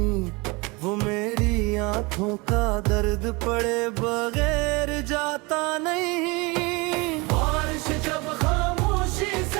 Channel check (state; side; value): quieter; left; 26.0 dB